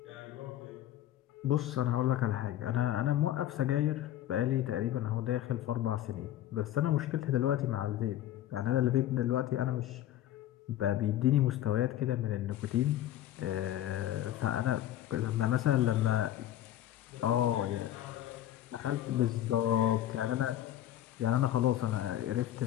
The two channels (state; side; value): quieter; right; 12.7 dB